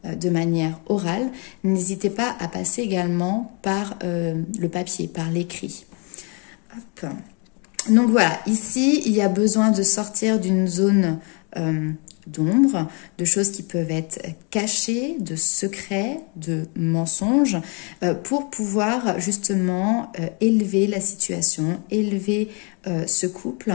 de manière orale, n'hésitez pas à passer également par le papier, par l'écrit. Donc voilà, ici, il y a besoin de sortir d'une zone d'ombre, de choses qui peuvent être cachées, de secrets, de mensonges, pour pouvoir justement élever la situation, élever ce couple.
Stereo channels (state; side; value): quieter; right; 34.3 dB